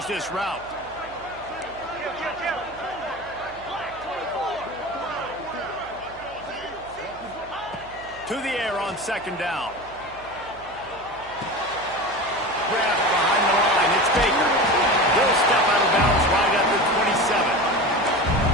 this route. To the air on second down. Grabbed behind the line. It's Baker. He'll step out of bounds right at the 27.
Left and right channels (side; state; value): right; noise; hum, 22 dB below the sound